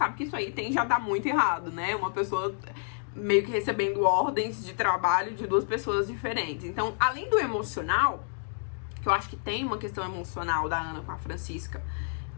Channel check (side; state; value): right; silent; digital silence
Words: que isso aí tende a dar muito errado, né? Uma pessoa meio que recebendo ordens de trabalho de duas pessoas diferentes. Então, além do emocional, que eu acho que tem uma questão emocional da Ana com a Francisca,